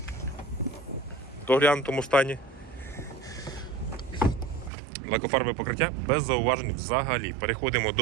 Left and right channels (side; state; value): left; drops out; at 4.7 s